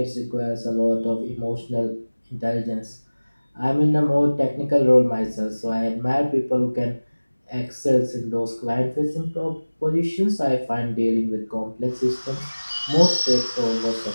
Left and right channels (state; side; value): inverted; both; correlation -1.00